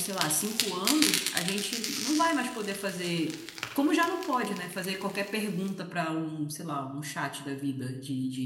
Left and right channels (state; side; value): identical; both; correlation 1.00